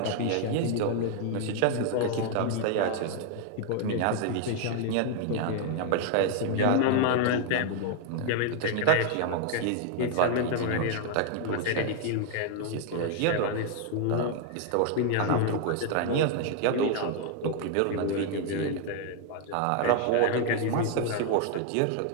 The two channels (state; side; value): different; both; correlation 0.00